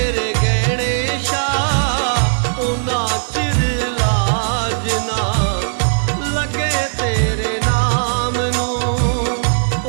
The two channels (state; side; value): silent; left; 65 dB below the other